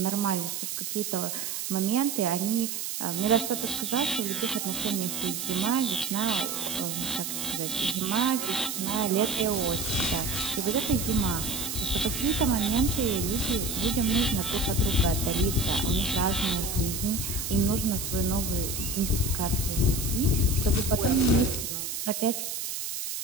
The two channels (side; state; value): right; noise; hiss, 4 dB below the sound